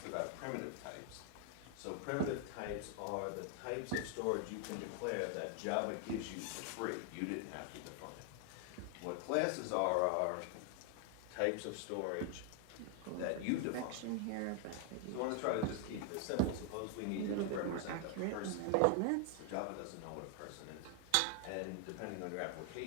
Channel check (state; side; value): different; both; correlation 0.00